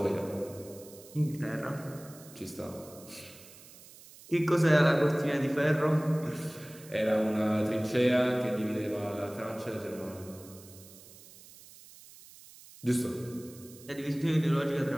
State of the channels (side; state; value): right; noise; hiss, 20 dB below the sound